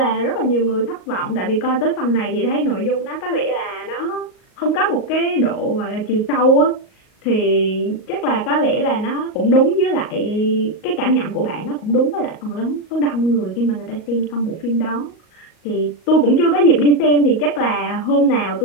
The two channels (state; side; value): late; right; 38 ms